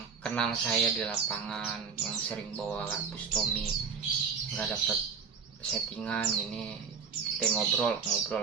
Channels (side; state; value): left; quieter; 6.1 dB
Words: kenal saya di lapangan, yang sering bawa Bustomi nggak dapet settingan ini, kita ngobrol